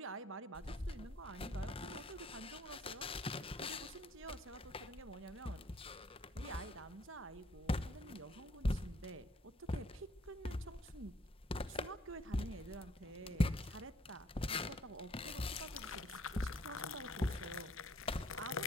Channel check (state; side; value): normal; both; correlation 0.64